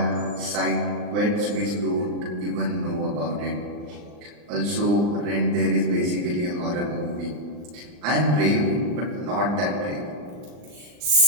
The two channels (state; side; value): late; left; 40 ms